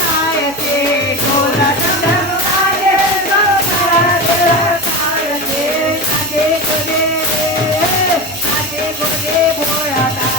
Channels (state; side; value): noise; right; hum, 20 dB below the sound